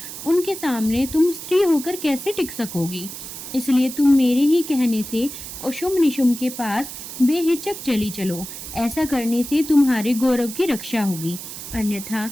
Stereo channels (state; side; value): noise; right; hiss, 10 dB below the sound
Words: उनके सामने तुम स्त्री होकर कैसे टिक सकोगी? इसलिए तुम मेरे ही कहने से शुंभ निशुंभ के पास बेहिचक चली चलो। ऐसा करने से तुम्हारे गौरव की रक्षा होगी, अन्यथा